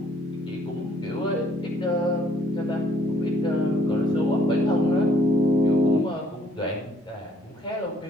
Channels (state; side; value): normal; both; correlation 0.63